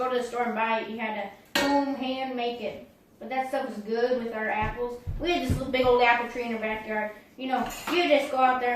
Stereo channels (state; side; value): identical; both; correlation 1.00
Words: to the store and buy it. You had to hand make it. But that stuff was good with our apples. We had this little big old apple tree in our backyard. You just go out